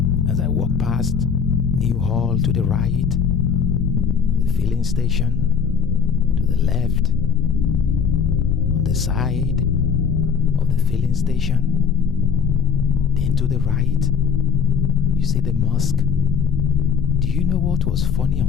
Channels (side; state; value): right; quieter; 6.5 dB